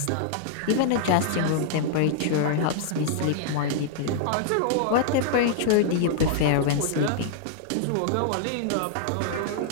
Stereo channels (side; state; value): both; different; correlation -0.01